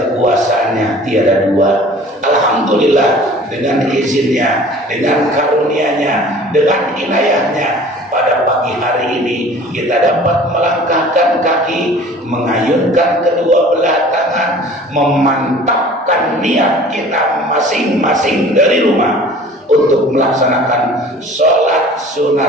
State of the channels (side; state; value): both; normal; correlation 0.47